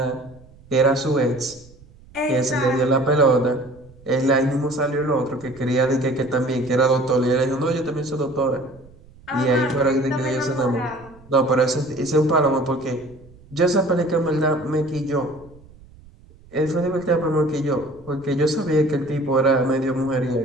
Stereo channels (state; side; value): noise; right; rumble, 24 dB below the sound